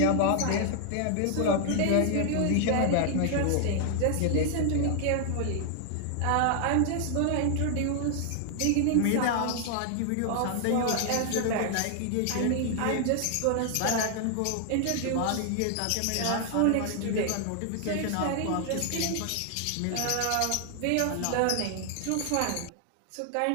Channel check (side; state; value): both; different; correlation 0.00